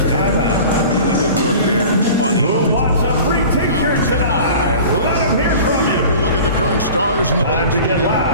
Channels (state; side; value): inverted; both; correlation -0.40